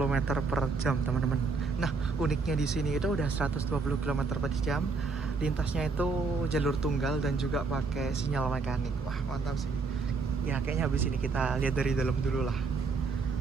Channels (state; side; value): quieter; left; 4.4 dB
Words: per jam teman-teman. Nah, uniknya di sini itu udah 120 km per jam, lintasnya itu jalur tunggal dan juga pakai sinyal mekanik. Wah, mantap sih. Ya, kayaknya habis ini kita lihat dari dalam dulu lah.